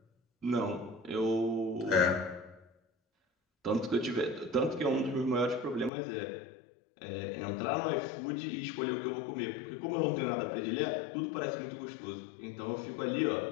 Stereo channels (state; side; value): drops out; right; at 5.9 s